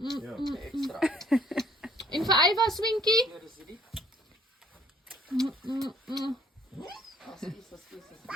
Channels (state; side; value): normal; both; correlation 0.61